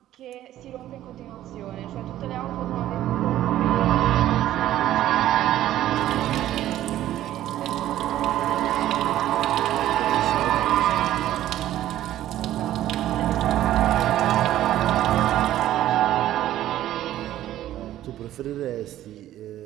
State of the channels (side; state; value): left; quieter; 13.2 dB